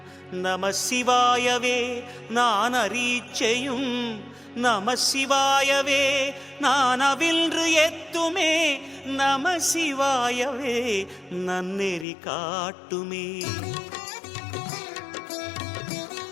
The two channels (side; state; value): right; drops out; at 12.1 s